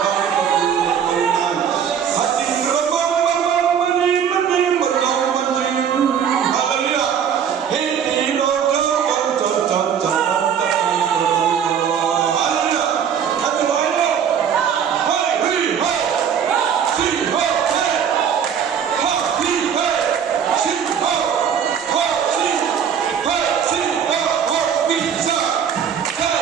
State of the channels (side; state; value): left; quieter; 7.9 dB